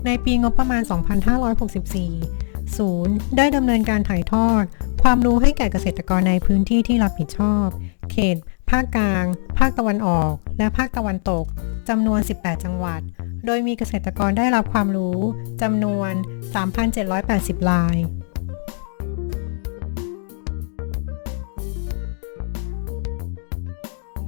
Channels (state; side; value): silent; right; digital silence